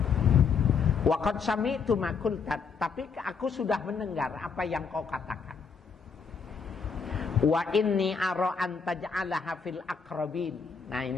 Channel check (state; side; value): quieter; right; 5.6 dB